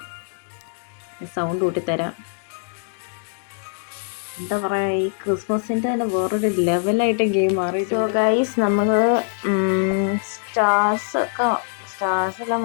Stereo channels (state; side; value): silent; right; digital silence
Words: സൗണ്ട് കൂട്ടിത്തരാം. എന്താ പറയുക, ഈ ക്രിസ്മസിൻ്റെ തന്നെ വേറൊരു ലെവലായിട്ട് ഗെയിം മാറി. സോ ഗൈസ് നമ്മൾ സ്റ്റാർസ്